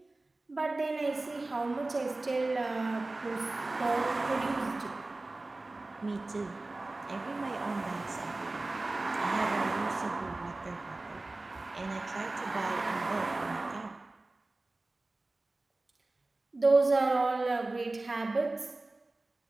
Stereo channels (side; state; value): left; quieter; 3.0 dB